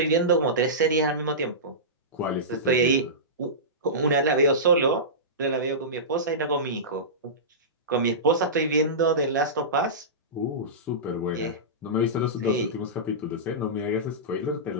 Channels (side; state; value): both; normal; correlation -0.18